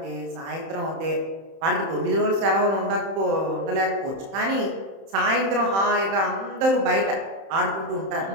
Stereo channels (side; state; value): left; late; 31 ms